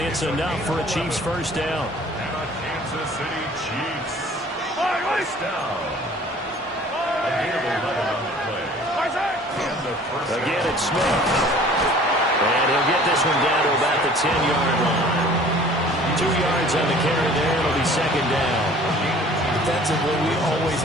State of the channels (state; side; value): normal; both; correlation 0.50